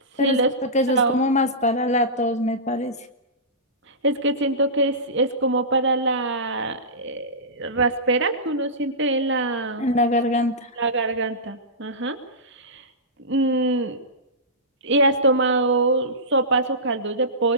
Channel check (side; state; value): both; normal; correlation -0.18